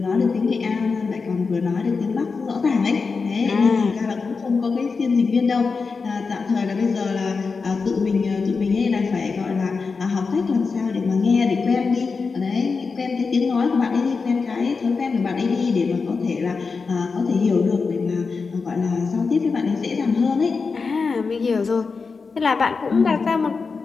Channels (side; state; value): right; quieter; 4.7 dB